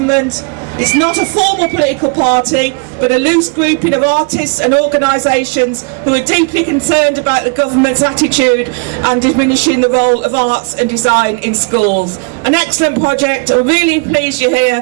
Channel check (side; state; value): left; quieter; 34.4 dB